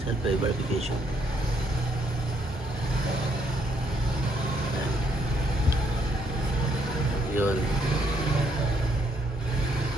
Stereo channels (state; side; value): normal; both; correlation 0.72